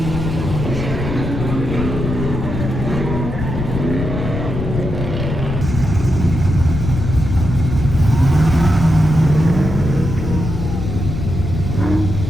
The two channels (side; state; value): left; noise; rumble, 4 dB below the sound